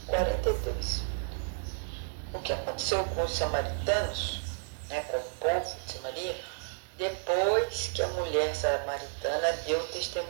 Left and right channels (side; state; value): left; silent; digital silence